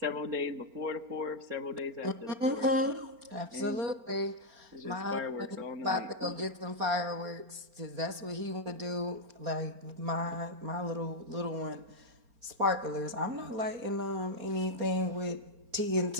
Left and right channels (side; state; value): left; late; 4.4 ms